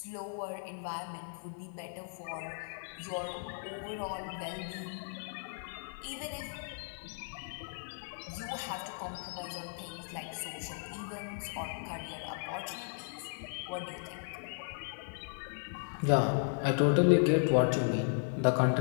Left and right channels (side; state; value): right; silent; 54 dB below the other